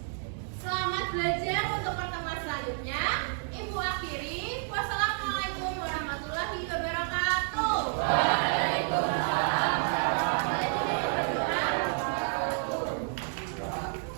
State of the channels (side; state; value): left; silent; 58 dB below the other